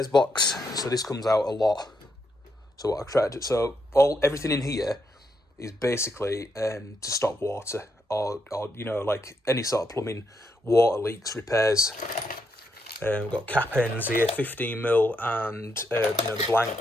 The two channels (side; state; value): both; normal; correlation 0.79